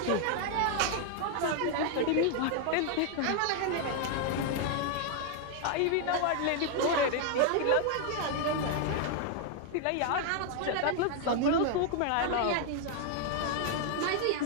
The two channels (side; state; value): both; different; correlation 0.00